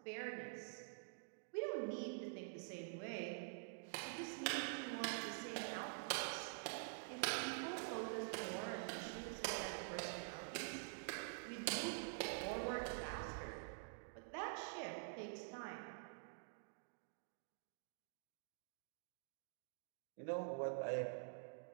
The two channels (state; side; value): silent; left; digital silence